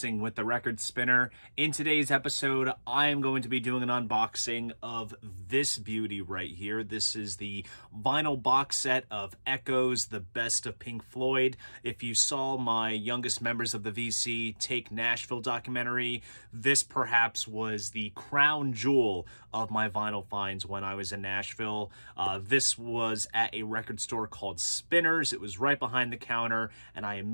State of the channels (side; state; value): both; inverted; correlation -1.00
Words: with the Record Spinner. In today's episode, I am going to be doing an unboxing of this beauty right here. This is the vinyl box set of Echoes, the best of Pink Floyd. If you saw my youngest members of the VC Take Nashville documentary, this perhaps was the crown jewel of my vinyl finds when I was in Nashville. This was at a record store called Spinners. It was right behind the counter, and I